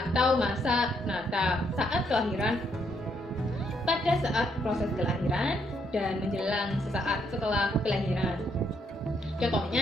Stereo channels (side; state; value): both; normal; correlation 0.73